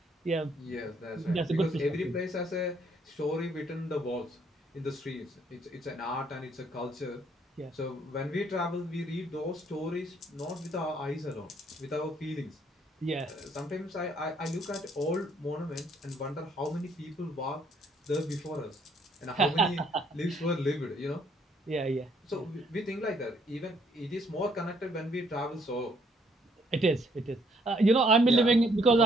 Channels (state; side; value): normal; both; correlation 0.66